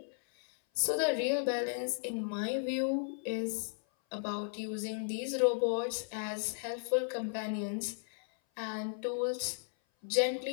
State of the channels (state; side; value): silent; right; 54 dB below the other